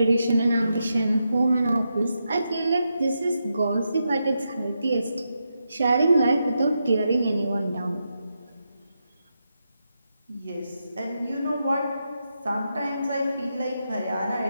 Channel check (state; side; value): inverted; both; correlation -0.85